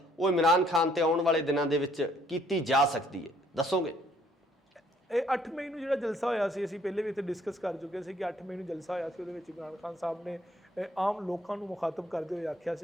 वो इमरान खान ते आउण वाले दिनों के विच कीती जा सकती है, दसोगे? 8 मई को जो जलसा होया सी, असीं पहले भी इत्थे डिस्कस कर चुके थे कि 8 मई को जलसा होया सी, उहदे विच इमरान खान साहब ने आम लोगों को मुखातब करते हुए आख्या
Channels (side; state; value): both; normal; correlation 0.64